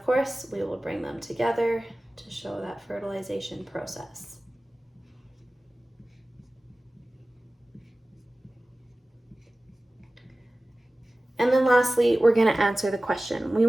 course, we will bring them together to show that fertilization process. And then lastly, we're going to answer the question. We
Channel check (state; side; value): normal; both; correlation 0.97